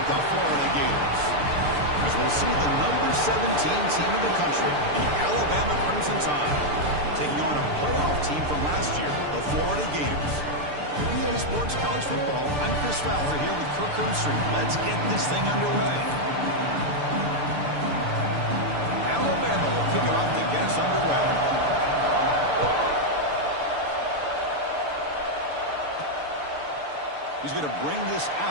the Florida Gators. As we'll see the number 17 team in the country, the Alabama Crimson Tide, taking on a playoff team from last year, the Florida Gators. EA Sports College Football, I'm Chris Fowler here with Kirk Herbstreit. Let's get this thing underway. Alabama will kick it off to get us underway. He's going to bring this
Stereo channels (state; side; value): late; left; 6.8 ms